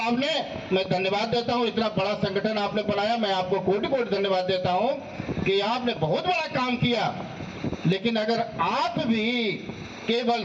ने। मैं धन्यवाद देता हूं, इतना बड़ा संगठन आपने बनाया, मैं आपको कोटि-कोटि धन्यवाद देता हूं कि आपने बहुत बड़ा काम किया। लेकिन अगर आप भी केवल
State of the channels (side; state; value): both; identical; correlation 1.00